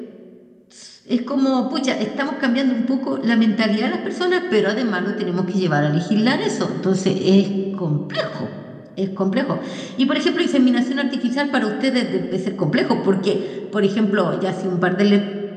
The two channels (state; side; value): identical; both; correlation 1.00